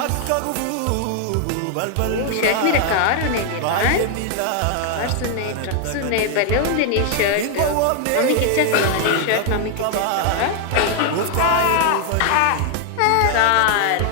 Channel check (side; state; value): both; different; correlation 0.00